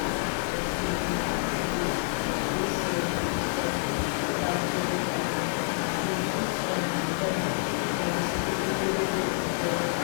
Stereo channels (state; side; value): silent; right; digital silence